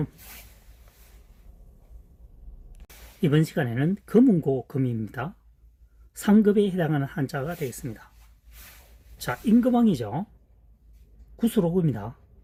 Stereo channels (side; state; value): both; identical; correlation 1.00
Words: 이번 시간에는 금운고 금입니다. 상급에 해당하는 한자가 되겠습니다. 자, 임금왕이죠. 구수로구입니다.